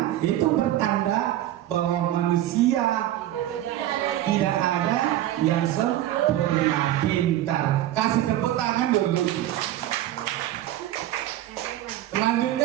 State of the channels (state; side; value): quieter; left; 13.4 dB